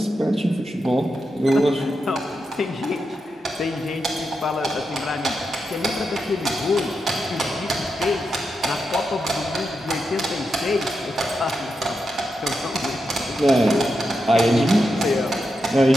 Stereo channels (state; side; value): normal; both; correlation 0.87